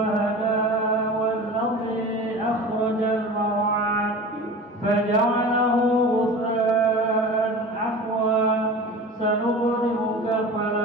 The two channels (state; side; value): normal; both; correlation 0.36